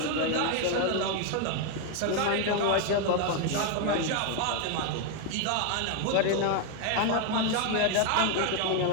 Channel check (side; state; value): both; different; correlation 0.01